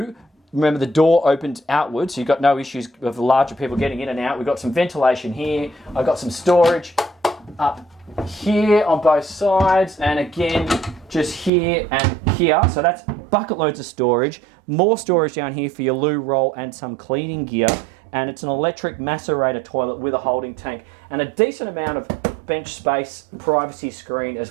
remember the door opens outwards, so you've got no issues of larger people getting in and out. We've got some ventilation here. I've got some storage up here on both sides, and again, just here and here. So that's bucket loads of storage. More storage down here for your loo roll and some cleaning gear. And it's an electric macerator toilet with a holding tank and a decent amount of bench space, privacy screen as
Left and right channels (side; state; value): left; drops out; at 11.5 s